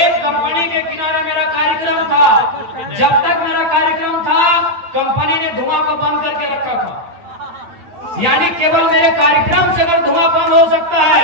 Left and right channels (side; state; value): left; late; 8.8 ms